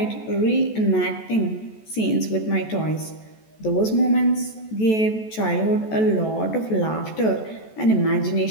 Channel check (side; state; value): right; late; 14 ms